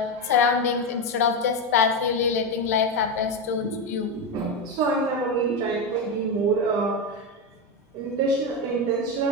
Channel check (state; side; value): normal; both; correlation 0.12